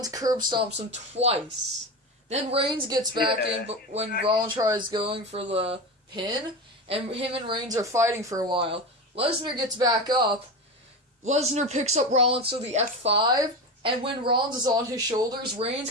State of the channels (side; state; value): both; normal; correlation 0.22